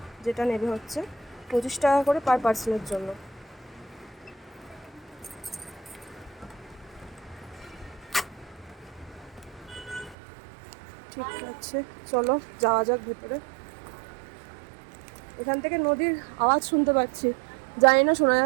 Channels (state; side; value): drops out; left; at 10.2 s